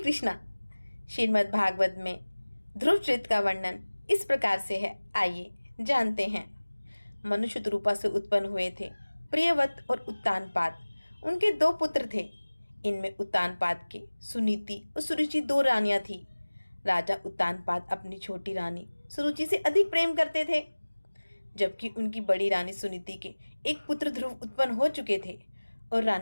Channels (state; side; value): inverted; both; correlation -1.00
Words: श्रीमद् भागवत में ध्रुव चरित्र का वर्णन इस प्रकार से है, आइए जानते हैं। मनुष्य रूपा से उत्पन्न हुए थे प्रियव्रत और उत्तानपाद। उनके दो पुत्र थे। इनमें उत्तानपाद के सुनीति और सुरुचि दो रानियां थी। राजा उत्तानपाद अपनी छोटी रानी सुरुचि से अधिक प्रेम करते थे, जबकि उनकी बड़ी रानी सुनीति के एक पुत्र ध्रुव उत्पन्न हो चुके थे और